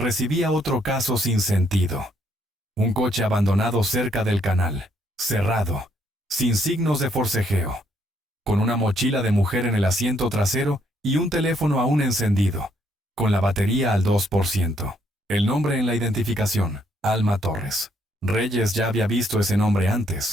otro caso sin sentido. Un coche abandonado cerca del canal, cerrado, sin signos de forcejeo, con una mochila de mujer en el asiento trasero y un teléfono aún encendido, con la batería al 2%. El nombre en la identificación, Alma Torres. Reyes ya había visto ese nombre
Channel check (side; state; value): both; normal; correlation 0.71